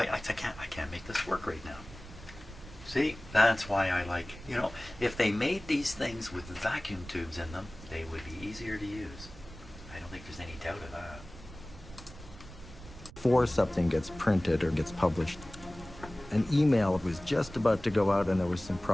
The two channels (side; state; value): right; noise; rumble, 16 dB below the sound